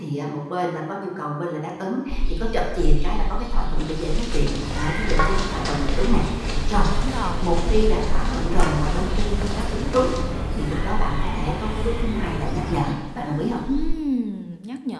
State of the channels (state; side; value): identical; both; correlation 1.00